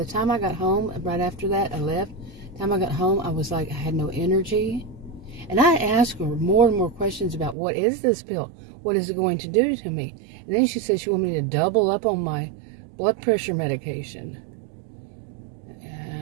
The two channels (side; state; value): left; drops out; at 7.6 s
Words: time I got home, right after that, I left. By the time I got home, I was like, I had no energy. And I asked her more and more questions about, what is this pill? What is it going to do to me? And then she said she wanted me to double up on my blood pressure medication.